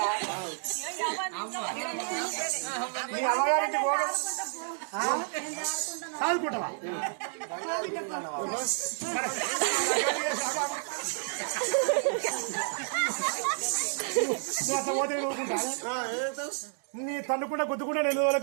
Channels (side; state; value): left; silent; 58 dB below the other